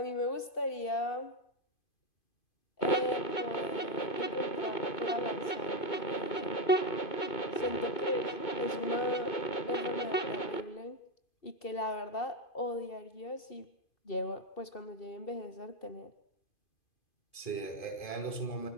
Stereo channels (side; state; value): right; late; 2.5 ms